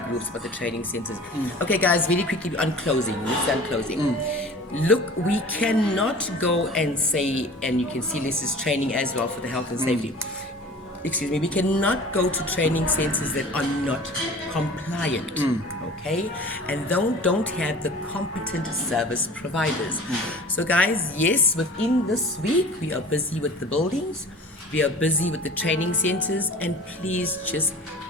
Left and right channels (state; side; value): normal; both; correlation 0.42